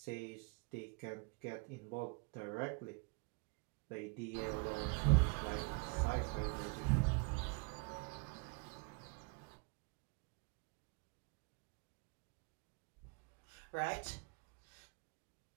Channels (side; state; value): left; quieter; 32.9 dB